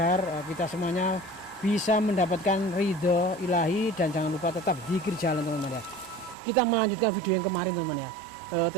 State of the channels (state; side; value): drops out; left; at 6.4 s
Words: kita semuanya bisa mendapatkan ridho ilahi. Dan jangan lupa tetap zikir jalan teman-teman ya. Kita melanjutkan video yang kemarin teman-teman ya.